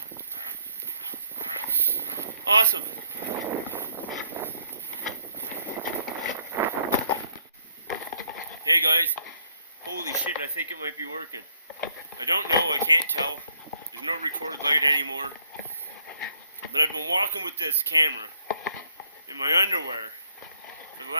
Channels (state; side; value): inverted; both; correlation -0.69